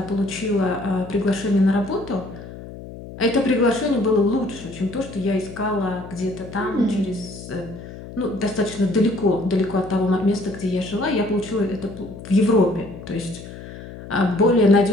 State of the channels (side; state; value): left; noise; hum, 13 dB below the sound